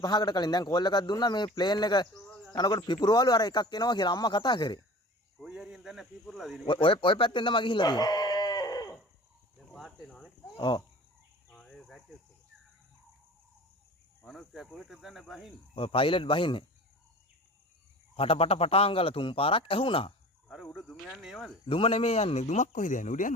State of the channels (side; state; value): both; normal; correlation 0.40